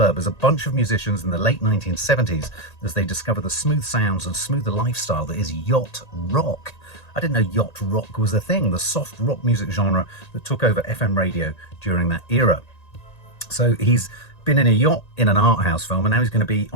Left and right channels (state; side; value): late; right; 1.9 ms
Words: as a bunch of musicians in the late 1970s as they discover the smooth sounds and smoother lifestyle that is yacht rock. I didn't know yacht rock was a thing, the soft rock music genre that took over FM radio during that era. So he's been in a yacht in an art house film, and now he's going to be